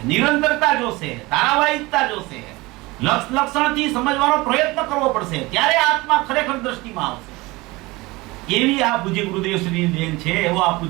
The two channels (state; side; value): quieter; left; 22.1 dB